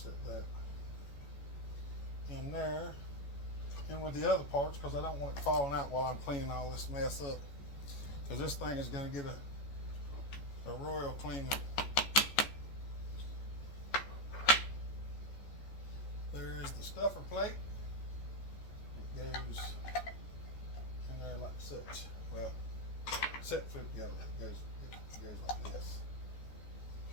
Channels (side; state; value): right; late; 14 ms